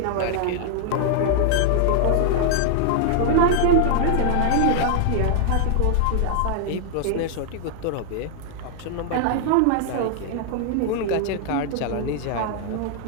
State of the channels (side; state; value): both; different; correlation -0.01